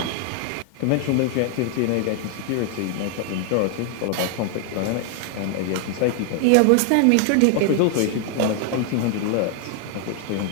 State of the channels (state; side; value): different; both; correlation 0.00